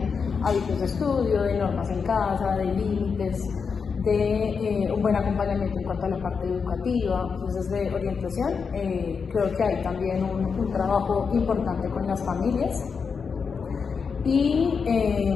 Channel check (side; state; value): right; quieter; 5.7 dB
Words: hábitos de estudio, de normas en casa, de límites, de un buen acompañamiento en cuanto a la parte educativa. Entonces, de orientación, creo que hay también un trabajo importante con las familias y